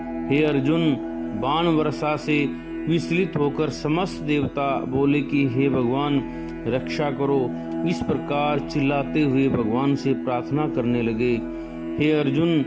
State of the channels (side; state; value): both; identical; correlation 1.00